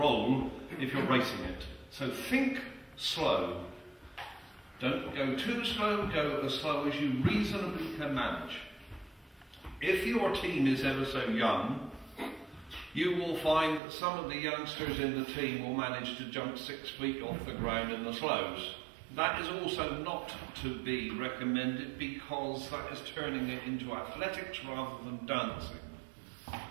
if you're racing it. So think slow. Don't go too slow, go as slow as you reasonably can manage. If your team is ever so young, you will find that some of the youngsters in the team will manage to jump 6 feet off the ground in the slows. That is also not to be recommended because that is turning it into athletics rather than dancing.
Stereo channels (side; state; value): left; drops out; at 13.8 s